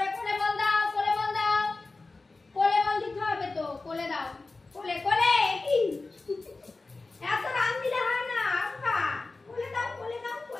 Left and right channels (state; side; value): quieter; right; 3.5 dB